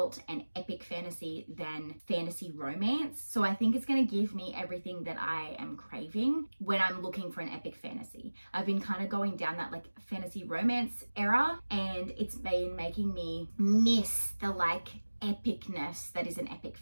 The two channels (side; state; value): both; inverted; correlation -1.00